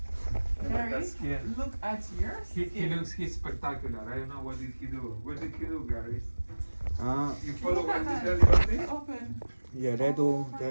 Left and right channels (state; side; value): inverted; both; correlation -1.00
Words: Gary, look at your skin. He's spectacular. I don't know what did he do. What did he do, Gary? You Look follow at what that. he tell you? Open. Yeah, they do.